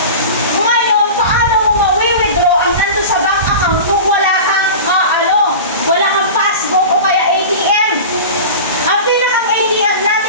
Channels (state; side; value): inverted; both; correlation -0.33